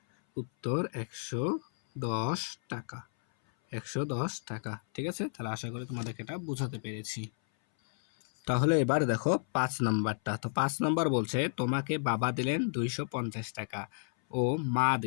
110 টাকা, 110 টাকা, ঠিক আছে? তাহলে আশা করি তোমাদেরকে এটা বোঝাতে পেরেছি। তাহলে এবার দেখো 5 নাম্বারটা। তো 5 নাম্বার বলছে তোমাকে বাবা দিলেন 250 টাকা ও মা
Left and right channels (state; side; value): silent; right; 56 dB below the other